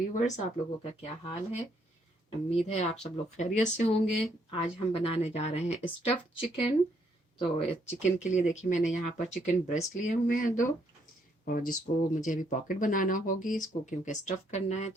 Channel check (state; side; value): normal; both; correlation 0.71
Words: आप लोगों का क्या हाल है? उम्मीद है आप सब लोग खैरियत से होंगे। आज हम बनाने जा रहे हैं स्टफ्ड चिकन। तो चिकन के लिए देखिए मैंने यहाँ पर चिकन ब्रेस्ट लिए हुए हैं 2, और जिसको मुझे अभी पॉकेट बनाना होगी इसको, क्योंकि स्टफ़ करना है।